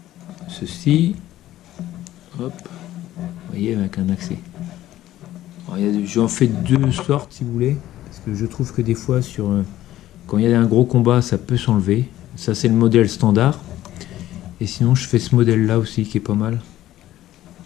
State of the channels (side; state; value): right; quieter; 14.0 dB